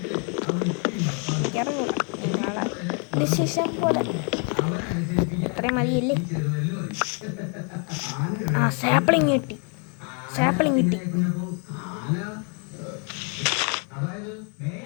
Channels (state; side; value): quieter; right; 38.8 dB